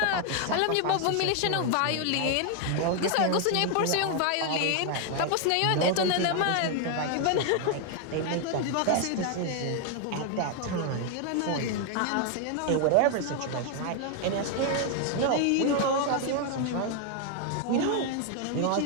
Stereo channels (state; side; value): different; both; correlation 0.00